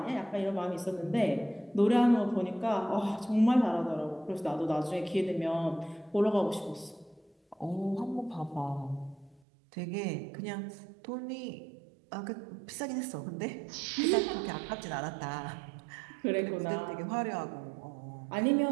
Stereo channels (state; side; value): drops out; left; at 9.4 s